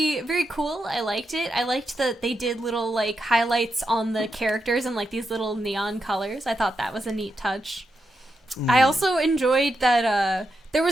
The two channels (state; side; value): normal; both; correlation 0.85